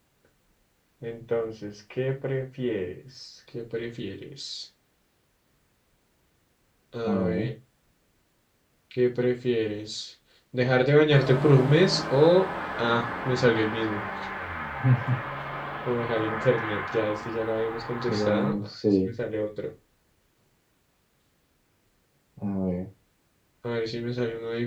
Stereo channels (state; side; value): identical; both; correlation 1.00